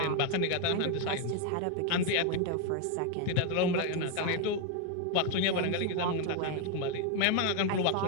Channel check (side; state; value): both; different; correlation 0.01